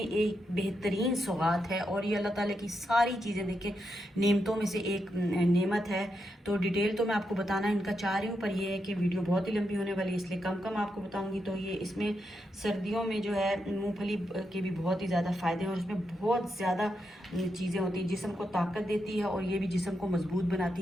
बेहतरीन सौगात है और ये अल्लाह ताला की सारी चीज़ें देखें नेमतों में से एक नेमत है। तो डिटेल तो मैं आपको बताना इनका चाह रही हूँ, पर यह है कि वीडियो बहुत ही लंबी होने वाली है, इसलिए कम कम आपको बताऊँगी। तो ये इसमें सर्दियों में जो है मूँगफली के भी बहुत ही ज़्यादा फ़ायदे हैं और इसमें बहुत ज़्यादा चीज़ें होती हैं, जिस्म को ताकत देती है और ये भी जिस्म को मजबूत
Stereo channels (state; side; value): normal; both; correlation 0.84